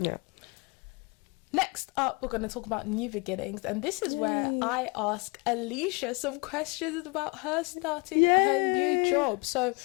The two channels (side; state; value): right; quieter; 30.0 dB